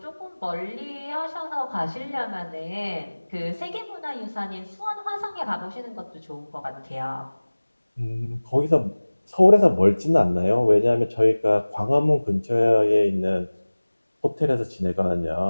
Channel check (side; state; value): both; inverted; correlation -1.00